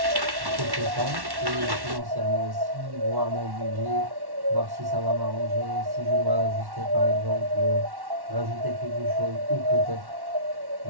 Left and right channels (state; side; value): late; left; 1.1 ms